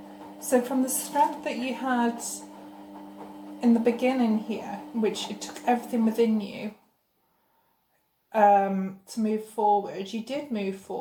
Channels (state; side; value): identical; both; correlation 1.00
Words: So from the strength that you had in the beginning here, which it took everything within you to move forward, you did move